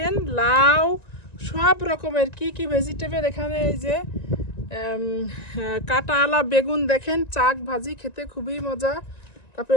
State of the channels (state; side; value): late; right; 1.9 ms